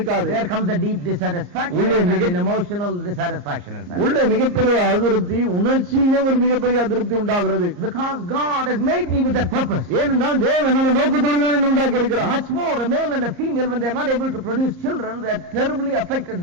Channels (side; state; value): left; late; 34 ms